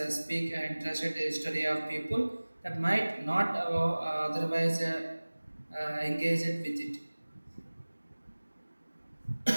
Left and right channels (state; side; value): inverted; both; correlation -1.00